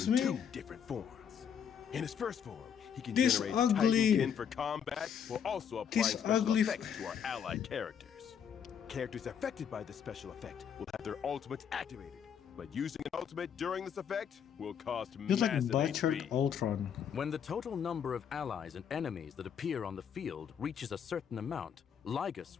between me? two different forms. In his first form, he can This generate ugly- Titankin for combat while also applying This special ugly- effects to our allied characters. Characters affected by the special effect will have their ultimates activated, but using an ultimate during this effect will cost Just like massive butchered HP. Ultron. When the total number of allies and enemies that appear on the field reaches a certain amount,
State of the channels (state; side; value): quieter; right; 7.9 dB